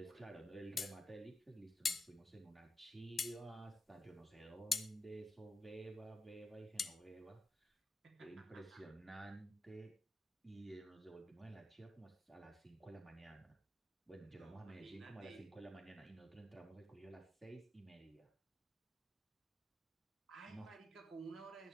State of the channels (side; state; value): both; normal; correlation 0.88